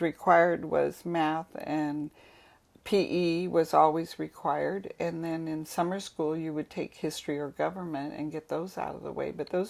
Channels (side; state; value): both; identical; correlation 1.00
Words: required was math, and PE was always required, and then in summer school you would take history or government and get those out of the way, but